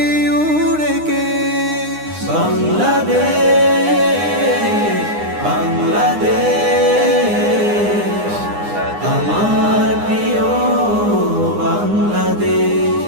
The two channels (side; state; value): left; late; 9.8 ms